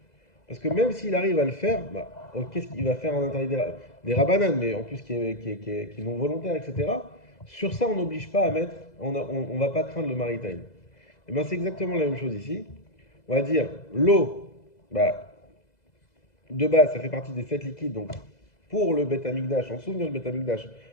Parce que même s'il arrive à le faire, bah, qu'est-ce qu'il va faire un interdit des rabanan, mais en plus qui est non volontaire, etc. Sur ça, on n'oblige pas à mettre, on va pas craindre le maritime. Et bien c'est exactement la même chose ici. On va dire l'eau, bah, de base, ça fait partie des 7 liquides, donc pour le Beth Amikdash, en souvenir du Beth Amikdash,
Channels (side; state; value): right; late; 2.0 ms